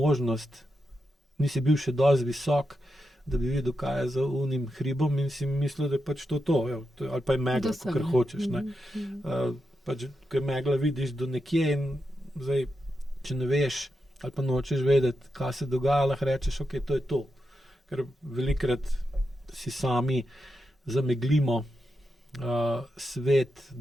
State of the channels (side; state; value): both; normal; correlation 0.87